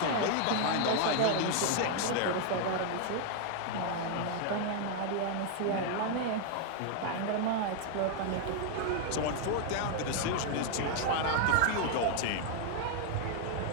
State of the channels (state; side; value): different; both; correlation 0.00